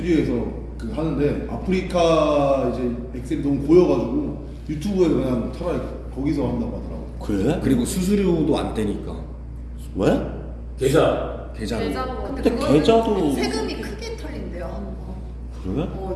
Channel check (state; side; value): identical; both; correlation 1.00